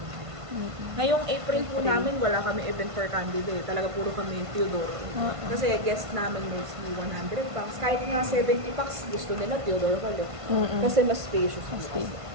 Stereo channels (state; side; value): late; left; 1.5 ms